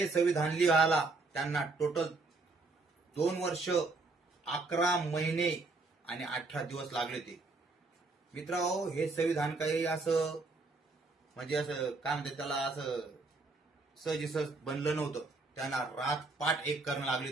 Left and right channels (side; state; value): left; quieter; 3.6 dB